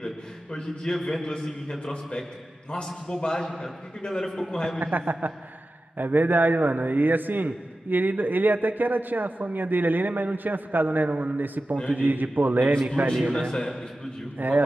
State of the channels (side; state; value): both; normal; correlation 0.94